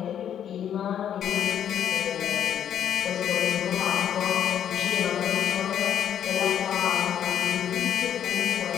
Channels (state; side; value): quieter; right; 9.6 dB